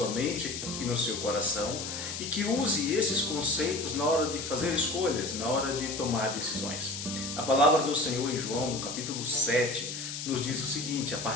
mente e no seu coração e que use esses conceitos na hora de fazer escolhas, na hora de tomar decisões. A palavra do Senhor em João, no capítulo 7, nos diz o seguinte, a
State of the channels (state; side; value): noise; left; hiss, 6 dB below the sound